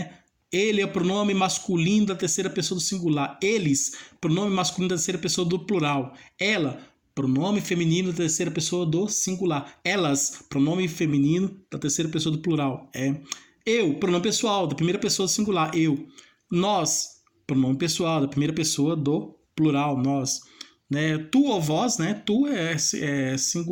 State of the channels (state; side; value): identical; both; correlation 1.00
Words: Ele é o pronome masculino da terceira pessoa do singular. Eles, pronome masculino da terceira pessoa do plural. Ela, pronome feminino da terceira pessoa do singular. Elas, pronome feminino da terceira pessoa do plural. Eu, pronome pessoal da primeira pessoa do singular. Eu. Nós, pronome pessoal da primeira pessoa do plural. Nós. Né? Tu ou vós, né? Tu é